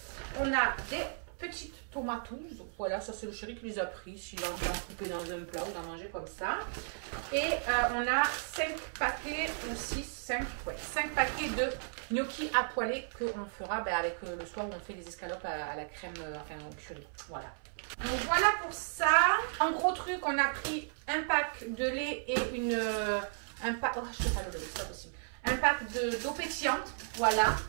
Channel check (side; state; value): left; silent; 55 dB below the other